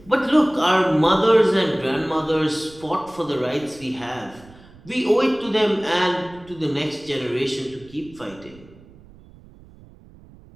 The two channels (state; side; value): noise; right; rumble, 23 dB below the sound